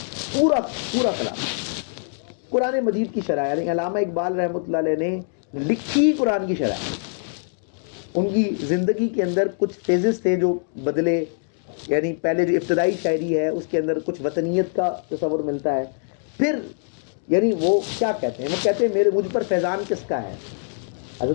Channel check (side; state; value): right; silent; digital silence